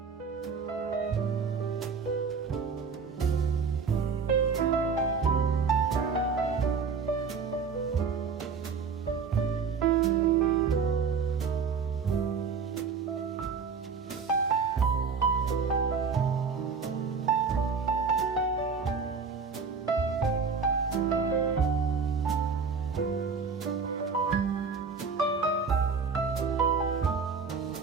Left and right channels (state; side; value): quieter; left; 5.5 dB